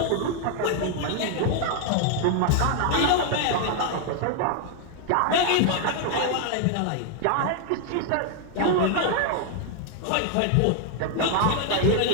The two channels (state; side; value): different; both; correlation 0.00